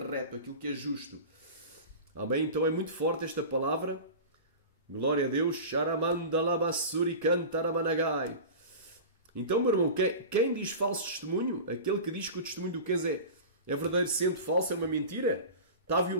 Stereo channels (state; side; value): inverted; both; correlation -0.32